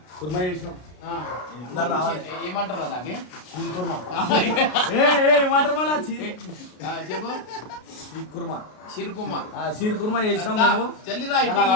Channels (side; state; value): right; late; 33 ms